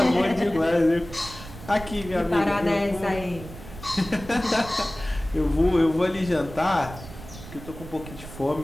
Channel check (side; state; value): right; noise; rumble, 15 dB below the sound